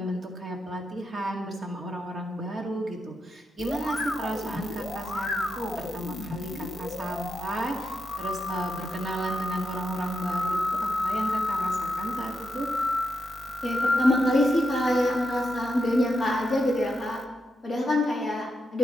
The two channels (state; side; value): normal; both; correlation 0.86